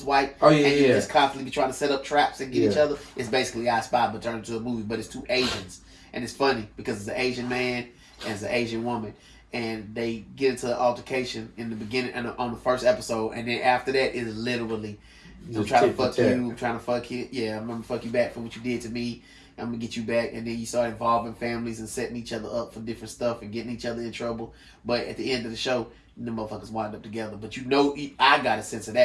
white. Oh, yeah, and you just constantly be trying to set up traps and get each other. It's basically I Spy, but turned into a movie. But it's 2 Asians. And it's funny because it's an Asian man and it's an Asian woman. And they get into an altercation in the beginning and on the first episode. And then after that, it is literally, I'm trying to fuck you, I'm trying to fuck you. Yeah, I'm going to fuck you back for what you did to me. I'm going to get you back. And then you start involving families and setting each other up for different stuff and getting each other in trouble. But at the end of the show, the motherfuckers wind up together. But you know, I got a sense of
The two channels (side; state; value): both; identical; correlation 1.00